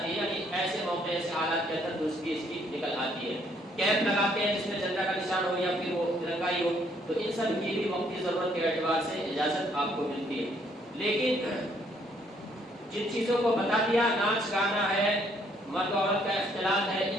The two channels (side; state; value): both; normal; correlation 0.67